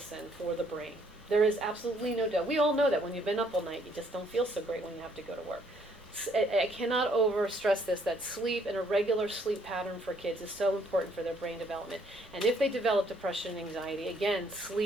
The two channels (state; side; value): normal; both; correlation 0.66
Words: for the brain. There is absolutely no doubt. We all know that when you've been up all night, you just don't feel so great when you have to go to work. I cannot overstress this, that sleep and a regular sleep pattern for kids is so important for their brain development. And if they develop depression and anxiety, again,